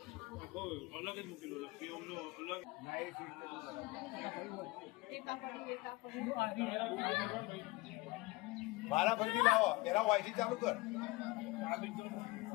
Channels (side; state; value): right; quieter; 21.7 dB